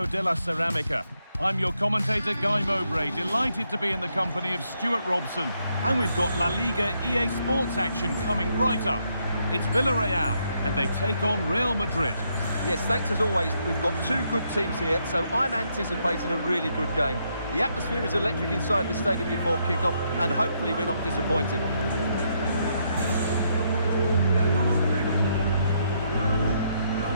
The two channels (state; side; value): inverted; both; correlation -0.76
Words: de la Ceramica. I'm your commentator, Guy Mowbray, delighted to be in the company of Stuart Robson. And we've got La Liga EA Sports action coming right up. It's Villarreal, and they take on Real Madrid. Yes, thanks as always. We've got two good teams here, so I'm anticipating a really good game. The atmosphere is electric inside the stadium before kick-off, and hopefully we're not disappointed.